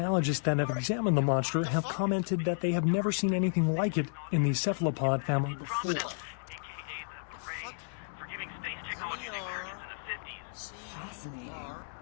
that have examined the monster have commented that they have never seen anything like it in the cephalopod family before. AKA the parade for giving space technology to the Americans in the 50s. Fascinating.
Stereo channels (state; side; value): silent; right; digital silence